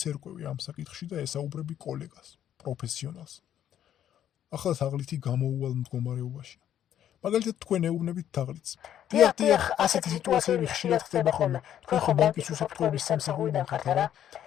ერკვევი ამ საკითხში და ესაუბრები კოლეგას, პროფესიონალს. ახლა თაღლითი გამოუვალ მდგომარეობაშია. მაგალითად თქვენ ეუბნებით თაღლითს. დიახ, ასეთი სიტუაციები ხშირად ხდება ხოლმე. თქვენ ხომ ბანკის უსაფრთხოების სამსახურიდან ხართ, არა?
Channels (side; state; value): right; quieter; 10.6 dB